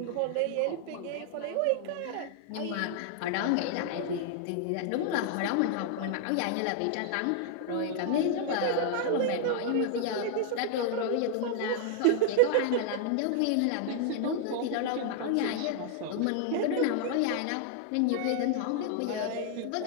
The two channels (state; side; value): different; both; correlation 0.00